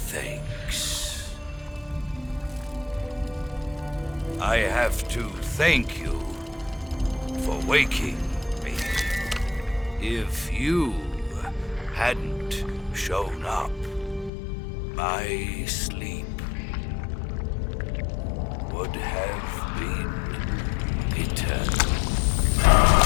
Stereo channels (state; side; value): drops out; right; at 14.3 s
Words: thanks. I have to thank you for waking me. If you hadn't shown up, my sleep would have been eternal.